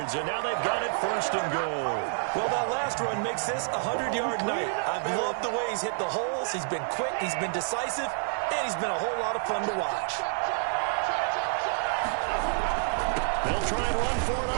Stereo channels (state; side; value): silent; left; digital silence